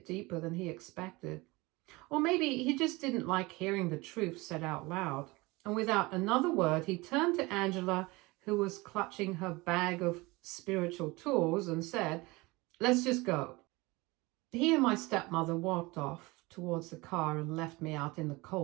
deeper than he expected. Or maybe he just didn't like hearing the truth said out loud. And without another word, he turned to Angela, who was clutching her bag of spiritual tools, and said, "Let's just go." He and my stepmother walked off towards the car and left me out in the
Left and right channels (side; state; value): left; quieter; 23.1 dB